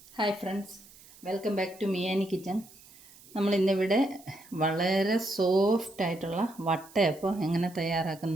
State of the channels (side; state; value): right; noise; hiss, 23 dB below the sound